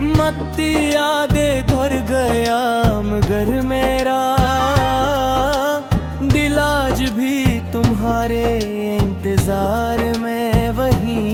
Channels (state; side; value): identical; both; correlation 1.00